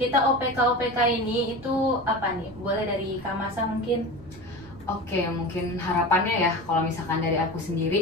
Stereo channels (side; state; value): right; noise; rumble, 21 dB below the sound